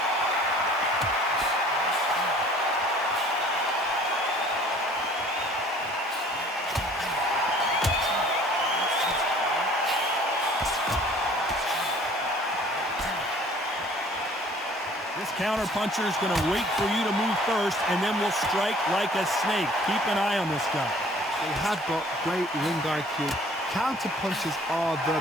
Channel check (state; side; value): normal; both; correlation 0.53